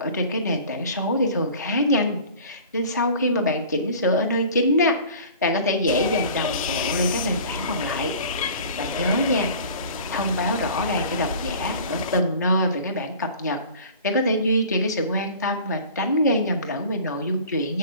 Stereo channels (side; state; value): both; inverted; correlation -0.43